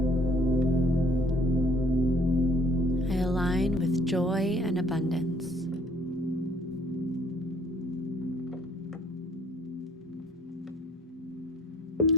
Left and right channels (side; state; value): both; normal; correlation 0.59